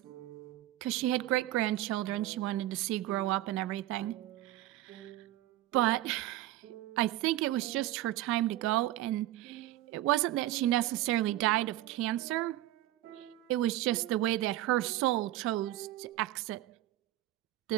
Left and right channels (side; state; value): left; quieter; 15.0 dB